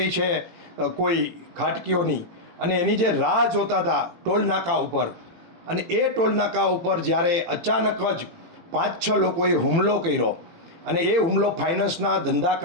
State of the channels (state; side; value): late; left; 18 ms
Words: છે કોઈ ખાટકીઓની, અને એની જે રાહ જોતા હતા ટોલ નાકા ઉપર, અને એ ટોલ નાકા ઉપર જ્યારે અચાનક જ 5-6 લોકોએ હુમલો કર્યો, અને એ હુમલો ફાઇનાન્સના ધંધા